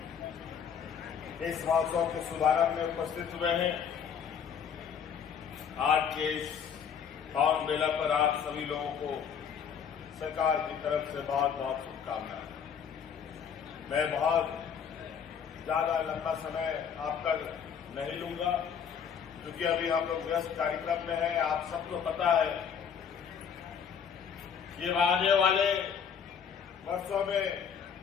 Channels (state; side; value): quieter; right; 7.4 dB